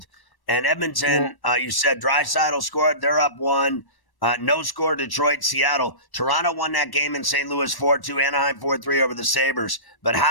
And Edmonton, you said Draisaitl scored. They're up 1. No score, Detroit, Seattle. Toronto won that game in St. Louis 4-2. Anaheim 4-3 over the Sabres. But how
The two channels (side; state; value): right; late; 1.1 ms